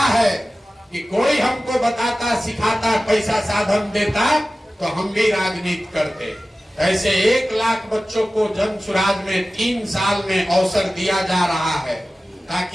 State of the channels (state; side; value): normal; both; correlation 0.96